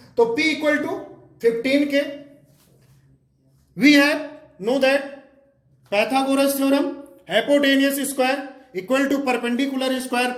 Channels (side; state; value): both; identical; correlation 1.00